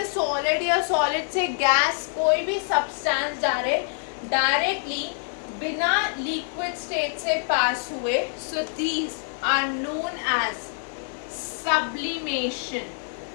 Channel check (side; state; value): right; silent; 61 dB below the other